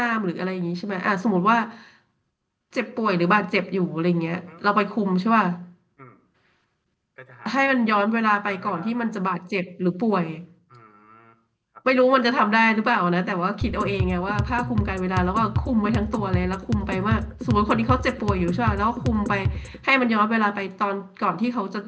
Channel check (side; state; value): both; identical; correlation 1.00